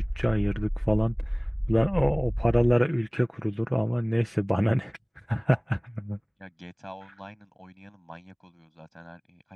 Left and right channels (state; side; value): identical; both; correlation 1.00